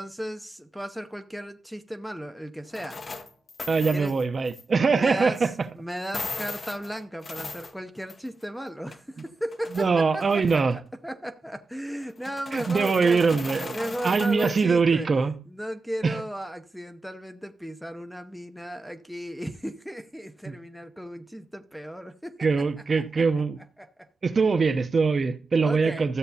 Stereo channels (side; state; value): left; quieter; 3.7 dB